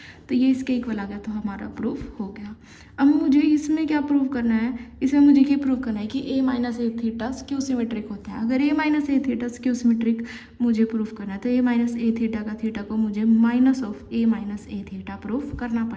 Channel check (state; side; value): identical; both; correlation 1.00